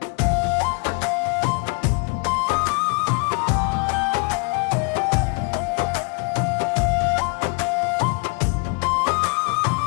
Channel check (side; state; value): right; quieter; 34.5 dB